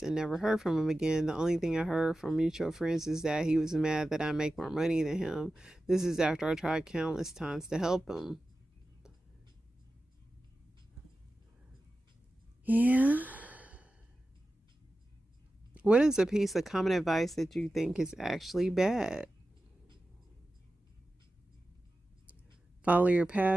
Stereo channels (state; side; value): normal; both; correlation 0.94